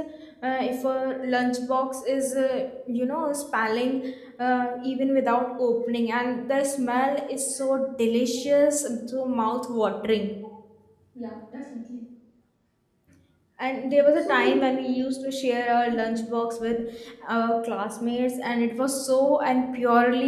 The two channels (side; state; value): both; identical; correlation 1.00